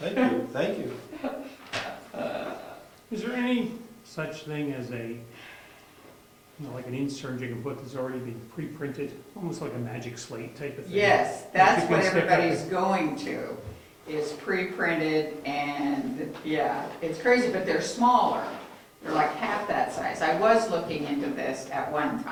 you, thank you. Is there any such thing as a, like an insert you can put that's already been pre-printed, almost like a magic slate type of thing? Yes, that's You can what stick up everybody's the- going to, is pre-printed, and, yeah, it's crazy, but they're smaller. They're like half that size. I was looking into this at one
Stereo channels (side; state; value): both; identical; correlation 1.00